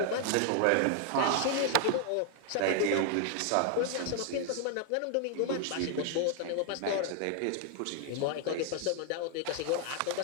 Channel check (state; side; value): different; both; correlation 0.00